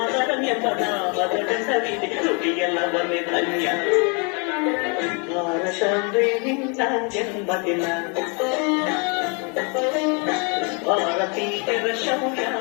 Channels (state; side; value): quieter; right; 34.3 dB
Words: ಎಂಬ ನಾಮದ ಹೆಸರಿದೆ ನುಡಿಯೆಲ್ಲ ಒಂದೇ ಧನ್ಯ ಭಾರತವೇ ನಿನ್ನ ಜನ್ಮದಿನ ಭಾರತೀಯರ ಶೌರ್ಯ